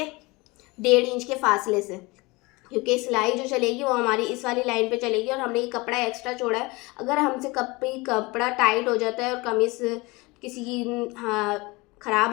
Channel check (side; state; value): right; quieter; 24.0 dB